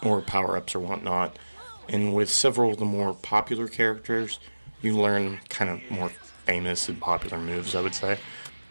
or power-ups or whatnot. And with several of the more popular characters, you learn kind of more famous and popular moves, I would say.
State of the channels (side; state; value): both; inverted; correlation -1.00